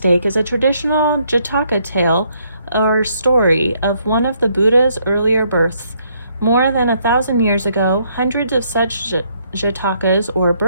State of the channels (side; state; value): both; inverted; correlation -0.71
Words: is a traditional Jataka tale or story of one of the Buddha's earlier births. More than 1,000 years ago, hundreds of such Jatakas or